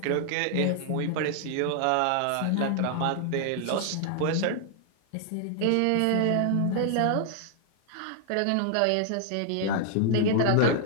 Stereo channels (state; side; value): different; both; correlation 0.00